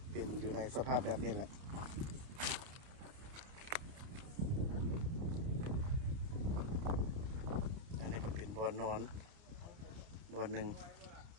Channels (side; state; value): left; late; 30 ms